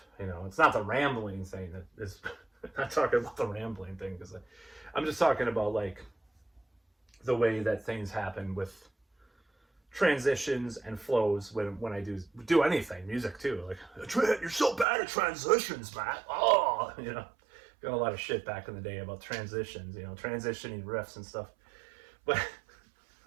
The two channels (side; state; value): left; drops out; at 14.9 s